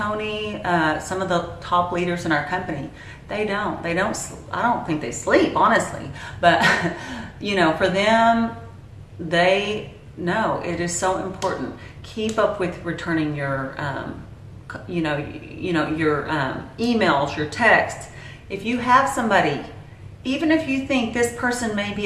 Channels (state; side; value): identical; both; correlation 1.00